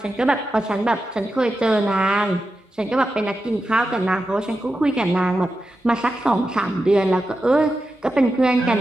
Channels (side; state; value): both; normal; correlation 0.90